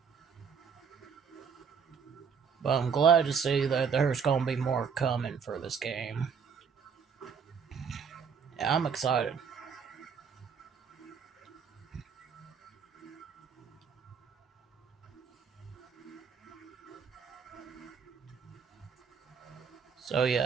But I'm glad to see that there's going to be more coming for this game. Yeah, I'm excited. So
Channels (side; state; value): left; quieter; 6.4 dB